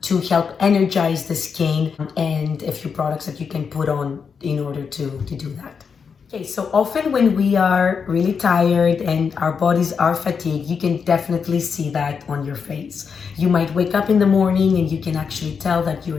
to help energize the skin and a few products that you can put on in order to do that. Okay, so often when we are really tired and our bodies are fatigued, you can definitely see that on your face. You might wake up in the morning and you can actually tell that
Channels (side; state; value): right; quieter; 6.1 dB